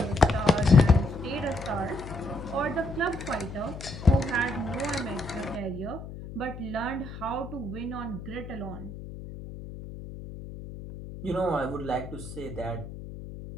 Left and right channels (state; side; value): noise; left; hum, 11 dB below the sound